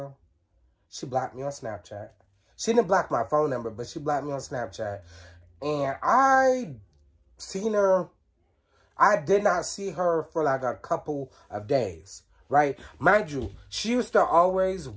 She blocked me on Snapchat. She didn't block my phone number, but she blocked me on Snapchat. And I seen her. I did not see her for like a couple of days, right? Mind you, she used to always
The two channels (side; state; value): both; identical; correlation 1.00